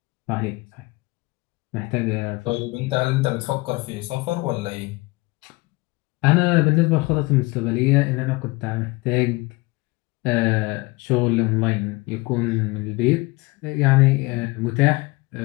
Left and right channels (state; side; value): quieter; right; 23.7 dB